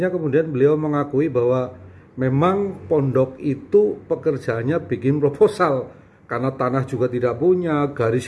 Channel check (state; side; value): identical; both; correlation 1.00